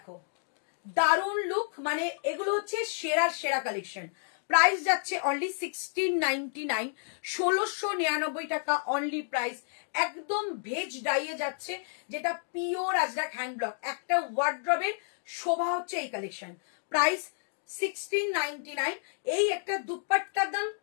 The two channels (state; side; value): silent; right; digital silence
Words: দারুণ লুক, মানে এগুলো হচ্ছে সেরা কালেকশন। প্রাইস যাচ্ছে অনলি 1699, 1699 টাকা অনলি প্রাইস। একদম ভেজ ডাইয়ে যাচ্ছে, যেটা পিওর আজরাক হ্যান্ড ব্লক। একটা ওয়ার্ড্রবের শোভা হচ্ছে এই কালেকশন। প্রাইস 1699। এই একটা দুপাট্টার দাম